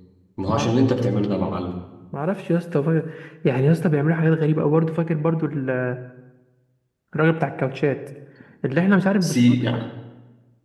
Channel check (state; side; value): identical; both; correlation 1.00